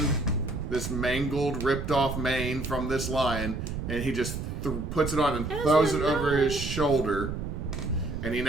this mangled, ripped off mane from this lion, and he just puts it on and throws it over his shoulder, and he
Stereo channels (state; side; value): noise; right; rumble, 5 dB below the sound